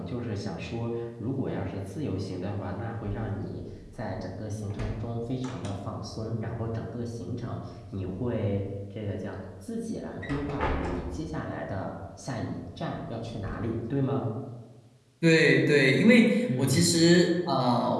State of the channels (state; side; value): identical; both; correlation 1.00